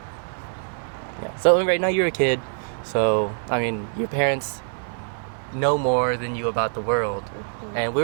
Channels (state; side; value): silent; left; digital silence